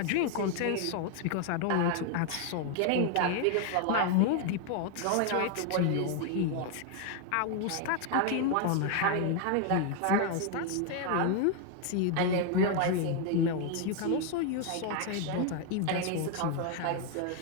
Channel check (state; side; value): different; both; correlation 0.01